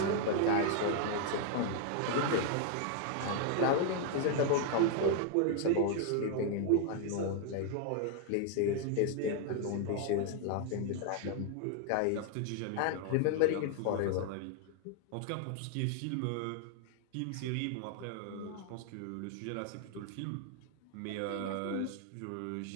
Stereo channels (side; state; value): both; different; correlation 0.00